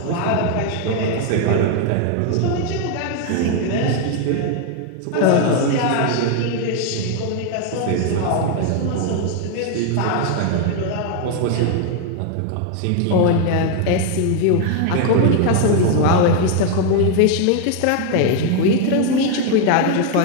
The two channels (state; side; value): different; both; correlation 0.01